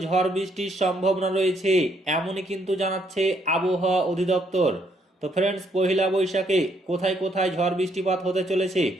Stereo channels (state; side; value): normal; both; correlation 0.71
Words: ঝড় বৃষ্টির সম্ভাবনা রয়েছে, এমনই কিন্তু জানাচ্ছে আবহাওয়া অধিদপ্তর। তো ফ্রেন্ডস, পহেলা বৈশাখে কোথায় কোথায় ঝড় বৃষ্টিপাত হতে চলেছে